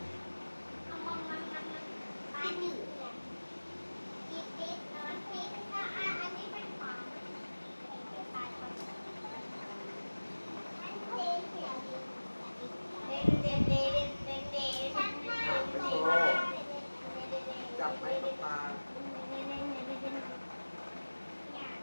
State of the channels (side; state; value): both; inverted; correlation -1.00